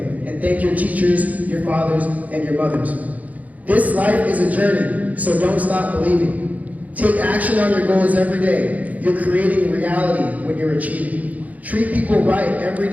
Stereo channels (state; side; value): late; left; 0.075 ms